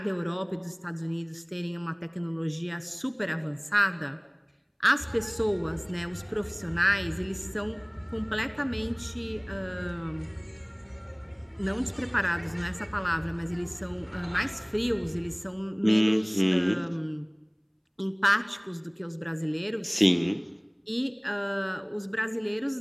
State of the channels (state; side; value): identical; both; correlation 1.00